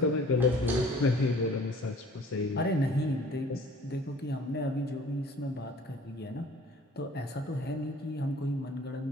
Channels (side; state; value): both; normal; correlation 0.50